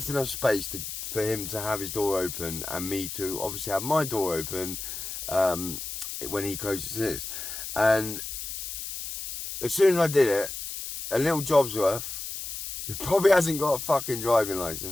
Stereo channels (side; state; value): left; noise; hiss, 7 dB below the sound